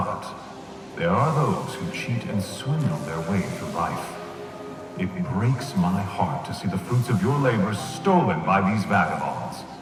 there are those who cheat and swindle their way through life. It breaks my heart to see the fruits of your labor stolen by these vagabonds.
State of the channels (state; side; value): identical; both; correlation 1.00